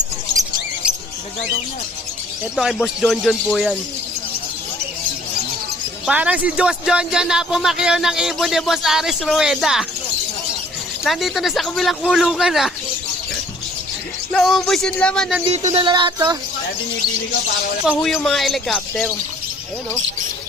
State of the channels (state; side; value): normal; both; correlation 0.56